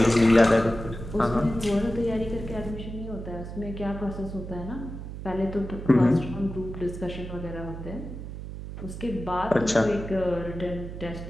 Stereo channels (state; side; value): noise; right; hum, 9 dB below the sound